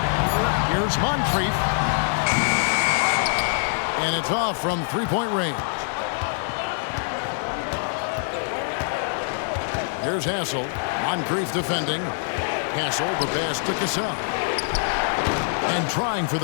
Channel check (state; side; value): silent; right; 61 dB below the other